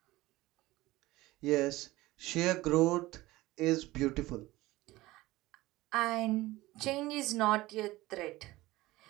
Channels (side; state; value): left; quieter; 18.6 dB